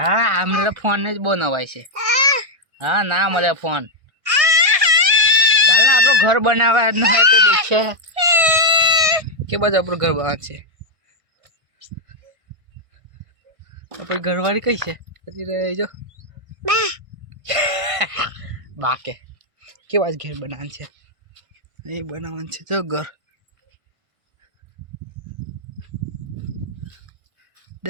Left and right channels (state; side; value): late; left; 1.6 ms